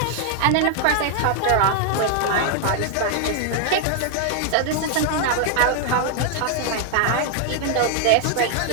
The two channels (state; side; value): different; both; correlation 0.00